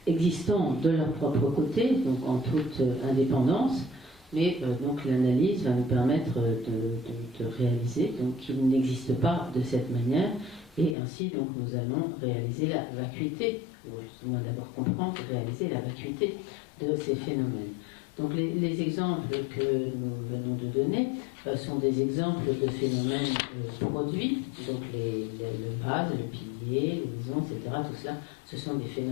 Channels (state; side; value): drops out; right; at 11.0 s